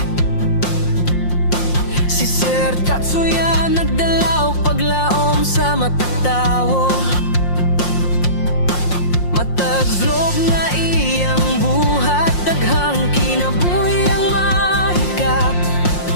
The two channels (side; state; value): right; late; 5.6 ms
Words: Si Sir Tatsuya nagdala og paglaom sa matag tawo. Matag vlog nga iyang buhat, daghang kinabuhi ang mahikap.